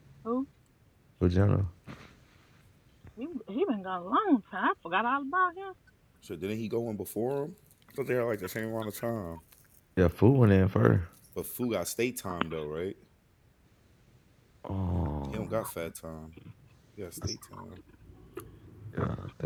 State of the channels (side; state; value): both; identical; correlation 1.00